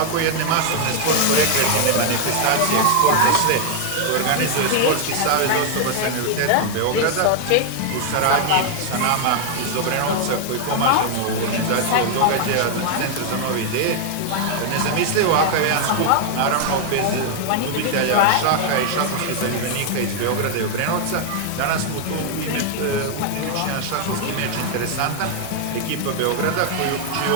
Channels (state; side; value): different; both; correlation 0.00